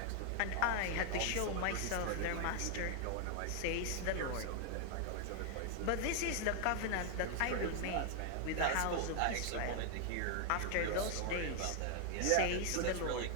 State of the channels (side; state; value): both; different; correlation 0.00